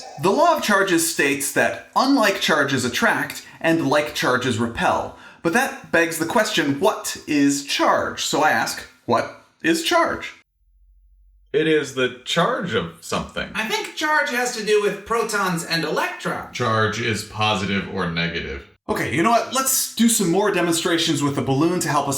The law of charges states that unlike charges attract and like charges repel. But that begs the question, what is charge? So I ask, what is charge? It is the charge of something. I think charge has to do with protons and electrons. Charge is positive or negative. Okay, you know what? Let's do some more demonstrations with the balloon to help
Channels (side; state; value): both; identical; correlation 1.00